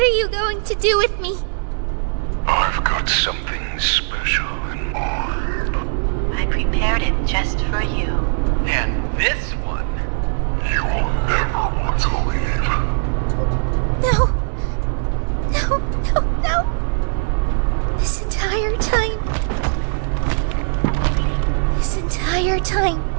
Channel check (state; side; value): silent; left; 66 dB below the other